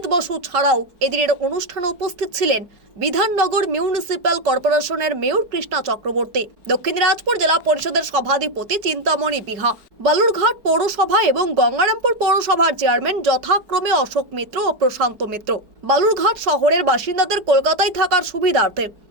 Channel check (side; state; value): left; late; 5.2 ms